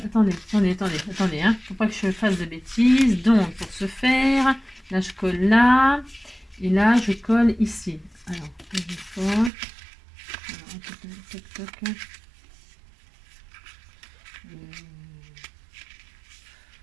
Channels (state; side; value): drops out; left; at 9.5 s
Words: Attendez, hein. Faut pas que je fasse de bêtises. Donc, pour ce faire, là, je colle là. Et là, je colle ici. Alors, je colle.